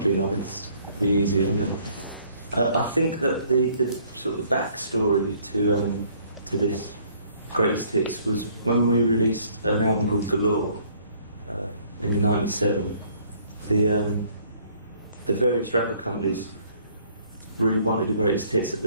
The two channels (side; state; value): both; inverted; correlation -0.61